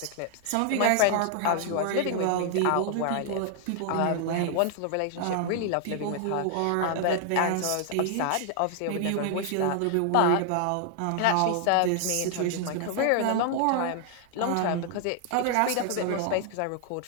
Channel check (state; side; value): different; both; correlation 0.00